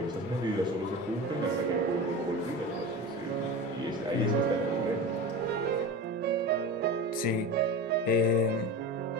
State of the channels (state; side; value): normal; both; correlation 0.28